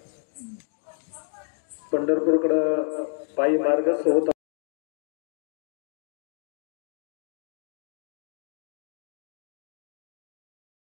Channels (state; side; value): silent; right; digital silence